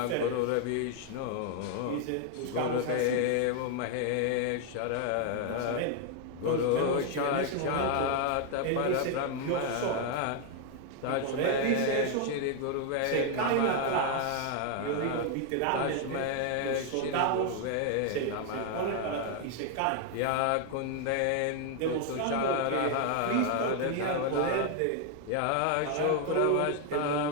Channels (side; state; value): both; different; correlation 0.00